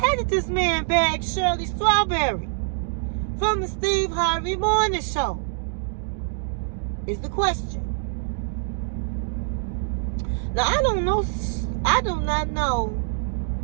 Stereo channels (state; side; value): silent; left; digital silence